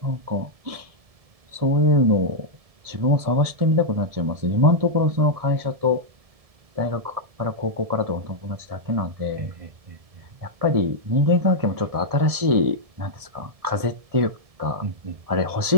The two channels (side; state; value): left; late; 1.7 ms